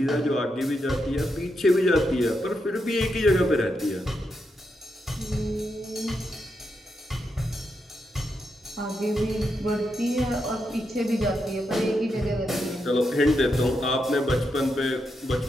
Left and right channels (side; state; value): both; normal; correlation 0.83